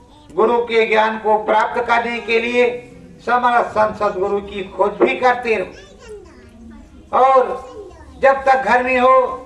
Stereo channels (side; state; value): both; identical; correlation 1.00